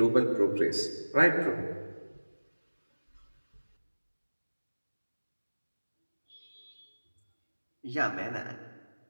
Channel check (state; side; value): inverted; both; correlation -1.00